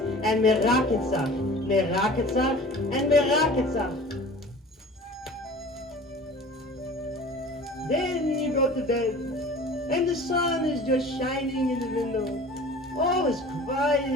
and me rockets up, me rockets up, and me rockets up. Then you go to bed, and the sun is just shining in the window. All is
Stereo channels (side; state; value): both; normal; correlation 0.42